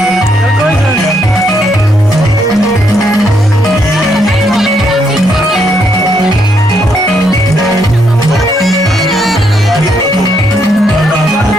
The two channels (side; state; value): both; normal; correlation 0.75